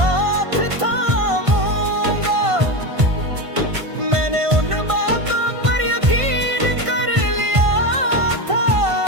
थामूंगा। मैंने उन बातों पर यकीन कर लिया था,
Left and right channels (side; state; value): left; late; 1.5 ms